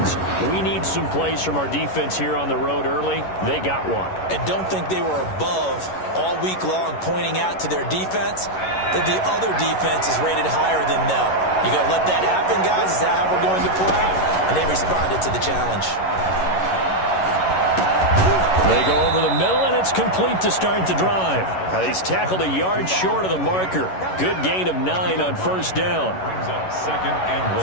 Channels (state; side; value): late; right; 11 ms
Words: we need some plays from our defense here on the road early. They got one. And don't think they were above all week long pointing out to their defense that the other defense is rated higher than them. You got to let that happen, guys. Is that how we're going to play? And they responded to the challenge. They go over the middle, and it's complete to start the drive. He's tackled a yard short of the marker. Good gain of 9 on first down.